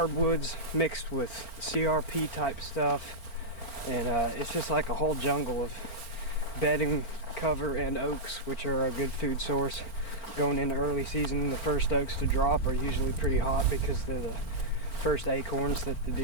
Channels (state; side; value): late; right; 4.4 ms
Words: mixed with CRP type stuff, and it's just like a whole jungle of bedding cover and oaks, which are a good food source going into early season. The first oaks to drop are usually pretty hot because they're the first acorns that the